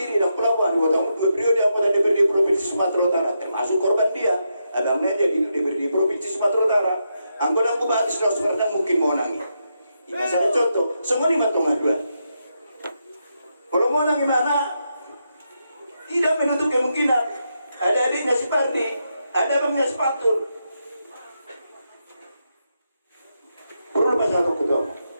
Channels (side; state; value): both; inverted; correlation -0.83